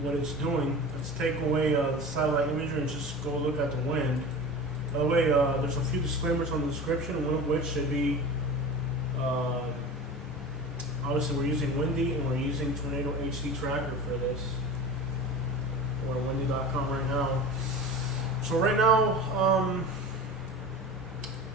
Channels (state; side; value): normal; both; correlation 0.33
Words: what it's doing. Let's take away the satellite imagery and just go look at the wind. By the way, there's a few disclaimers on the description, one of which should be obviously we're using Windy and we're using Tornado HD Tracker for this. We're on windy.com right now. So right now,